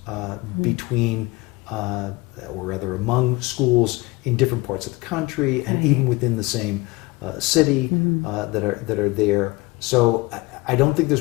between, or rather among schools in different parts of the country and even within the same city that are there. So I don't think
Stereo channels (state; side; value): quieter; right; 23.0 dB